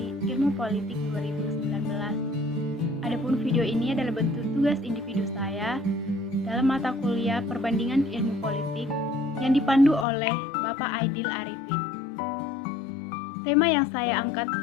Ilmu Politik 2019. Adapun video ini adalah bentuk tugas individu saya dalam mata kuliah Perbandingan Ilmu Politik yang dipandu oleh Bapak Aidil Arifin. Tema yang saya angkat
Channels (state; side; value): drops out; right; at 10.1 s